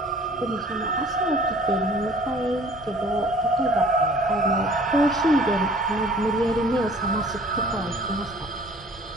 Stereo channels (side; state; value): both; normal; correlation 0.52